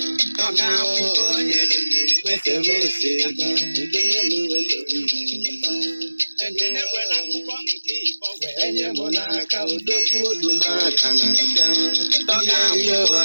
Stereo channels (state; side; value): inverted; both; correlation -1.00